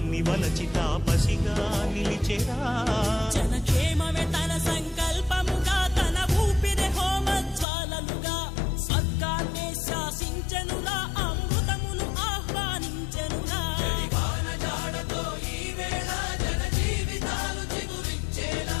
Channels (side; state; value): right; drops out; at 7.7 s